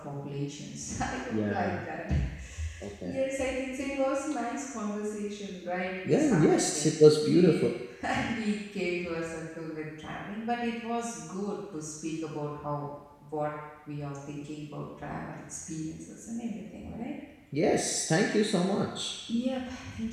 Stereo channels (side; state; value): both; identical; correlation 1.00